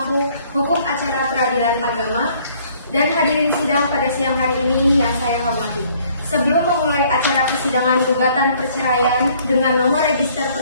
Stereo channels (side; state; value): both; inverted; correlation -0.60